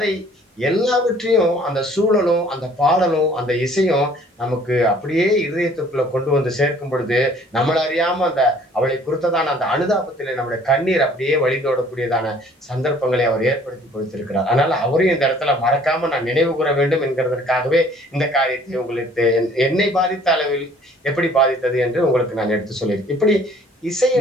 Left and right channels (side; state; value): both; normal; correlation 0.56